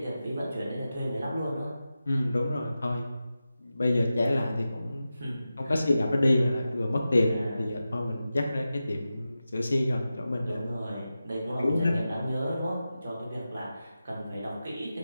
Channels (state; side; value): inverted; both; correlation -0.92